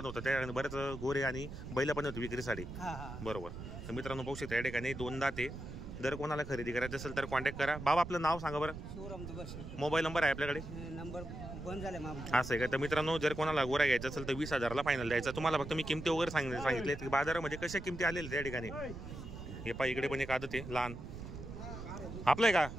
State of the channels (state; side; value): noise; right; rumble, 9 dB below the sound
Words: होतं, त्या ठिकाणी बरेच गोरे आणि बैल पण होती विक्रीसाठी, बरोबर। तर मित्रांनो पाहू शकता या ठिकाणी 2 दात आहे। जर कोणाला खरेदी करायचं असेल तर कॉन्टॅक्ट करा। बाबा आपलं नाव सांगा बरं। मोबाईल नंबर आहे आपल्याकडे? नंबर बंद झाले असं आहे का? तर मित्रांनो, जर कोणाला गोरा घ्यायचा असेल तर 20,000 फायनल द्यायचा। तुम्हाला फक्त मी किमती वगैरे सांगितले की बाजारामध्ये कशा किमती आलेल्या त्या ठिकाणी। हे पहा, इकडे पण एक आदत आहे लहान, आपलं आहे का?